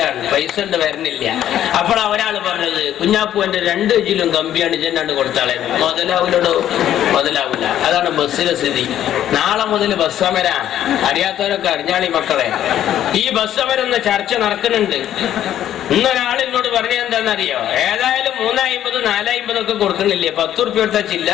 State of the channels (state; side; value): quieter; right; 11.4 dB